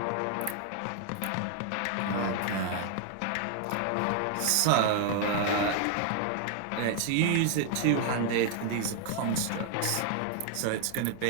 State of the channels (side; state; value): both; different; correlation 0.00